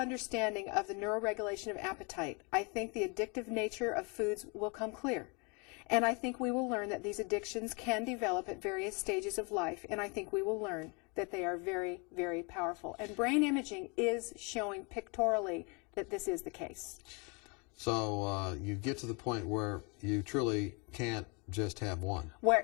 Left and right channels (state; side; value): quieter; right; 31.9 dB